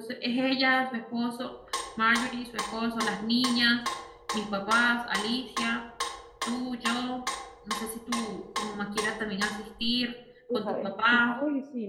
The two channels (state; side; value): identical; both; correlation 1.00